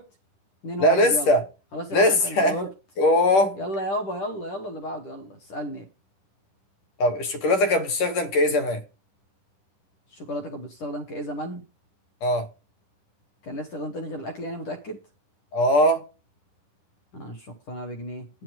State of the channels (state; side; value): late; right; 10 ms